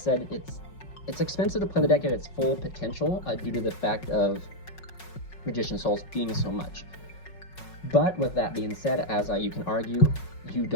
it's expensive to play the deck at its full potential due to the fact of Magician Souls being so much. But with that being said, as you can argue, you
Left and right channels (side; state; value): right; late; 5.4 ms